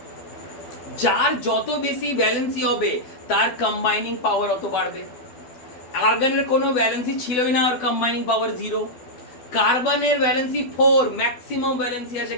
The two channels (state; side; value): late; right; 12 ms